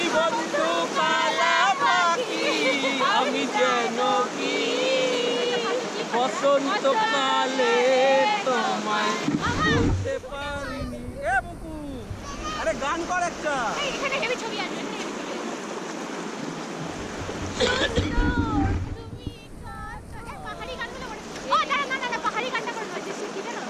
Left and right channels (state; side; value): identical; both; correlation 1.00